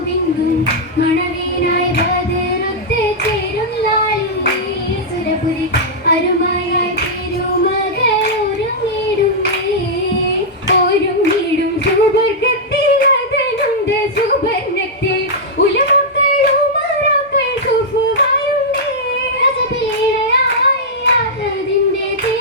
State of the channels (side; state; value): both; normal; correlation -0.08